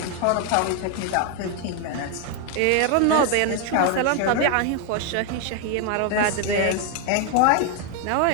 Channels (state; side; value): different; both; correlation 0.01